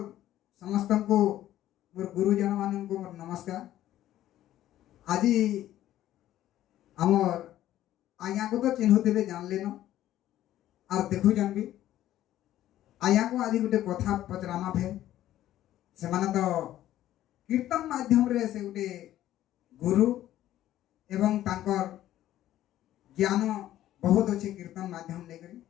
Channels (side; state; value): right; quieter; 13.2 dB